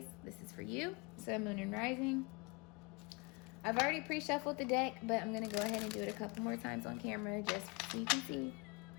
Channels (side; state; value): right; quieter; 29.1 dB